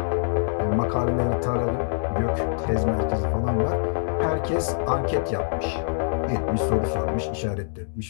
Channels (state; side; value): silent; right; digital silence